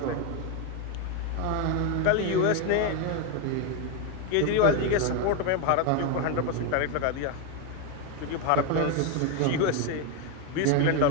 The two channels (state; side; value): different; both; correlation 0.02